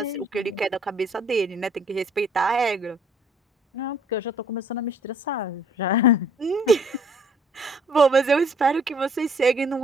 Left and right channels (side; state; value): both; normal; correlation 0.58